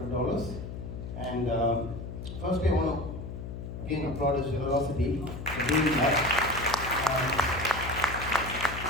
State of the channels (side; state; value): left; noise; hum, 8 dB below the sound